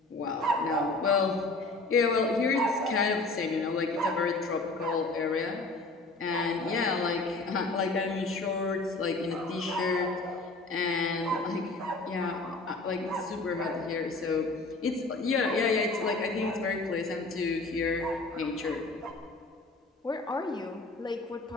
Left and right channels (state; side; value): quieter; right; 3.3 dB